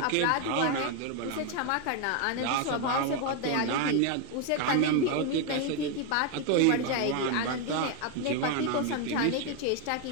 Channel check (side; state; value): both; different; correlation 0.01